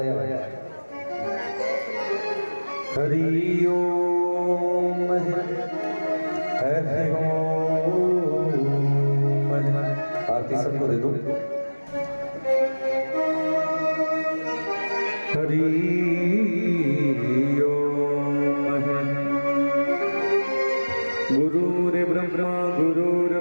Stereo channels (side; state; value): both; inverted; correlation -1.00